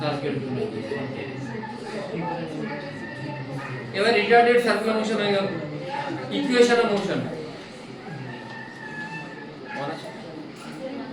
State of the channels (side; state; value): both; identical; correlation 1.00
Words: করে এবার রিটার্ডেড সার্কুলার মোশন হয়ে গেল equation of motion